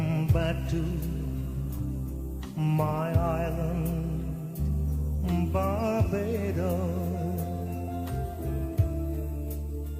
back to my island, Barbados.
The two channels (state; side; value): identical; both; correlation 1.00